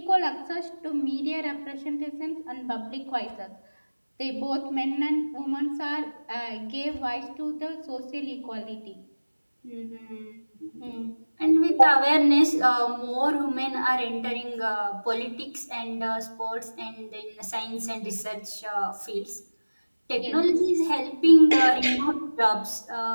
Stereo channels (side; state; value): both; inverted; correlation -1.00